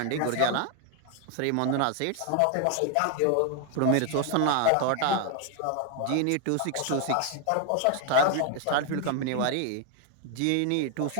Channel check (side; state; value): both; different; correlation 0.00